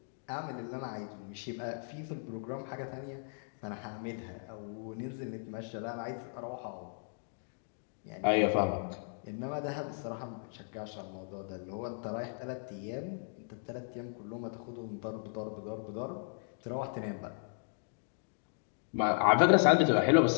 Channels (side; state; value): right; silent; digital silence